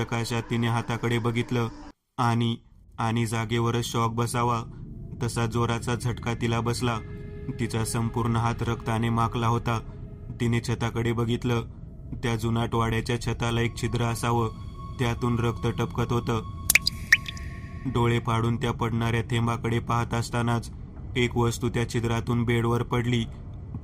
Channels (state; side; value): identical; both; correlation 1.00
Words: तिने हाताकडे बघितलं आणि जागेवरच शॉक बसावा तसा जोराचा झटका तिला बसला. तिचा संपूर्ण हात रक्ताने माखला होता. तिने छताकडे बघितलं. त्या जुनाट वाड्याच्या छताला एक छिद्र असावं, त्यातून रक्त टपकत होतं. डोळे फाडून त्या पडणाऱ्या थेंबाकडे पाहत असतानाच एक वस्तू त्या छिद्रातून बेडवर पडली.